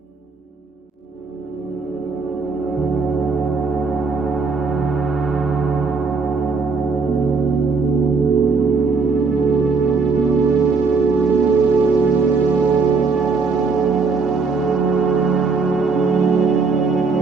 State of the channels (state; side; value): quieter; left; 4.6 dB